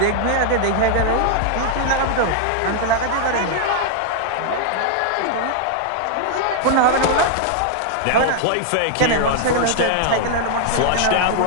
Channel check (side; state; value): both; different; correlation 0.00